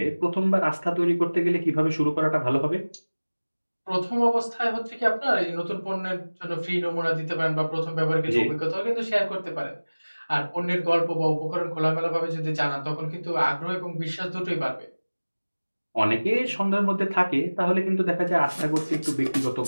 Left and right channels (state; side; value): inverted; both; correlation -1.00